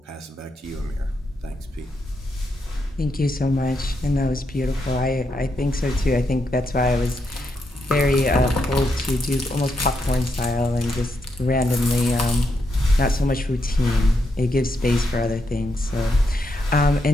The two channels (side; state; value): both; normal; correlation 0.81